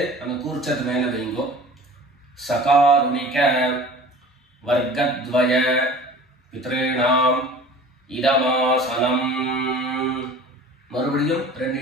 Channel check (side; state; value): both; normal; correlation 0.43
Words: அந்த கூர்ச்சத்து மேல வைங்க. சகாருணிக வர்க்கத்வய பித்ருணாம் இதமாசனம். மறுபடியும் 2